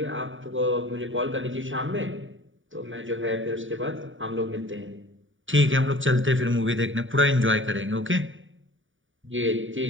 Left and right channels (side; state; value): left; late; 0.57 ms